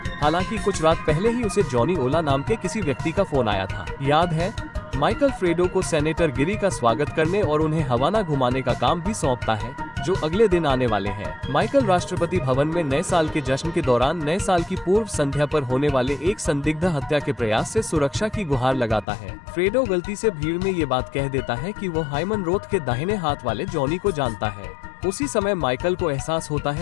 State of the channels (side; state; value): right; drops out; at 19.1 s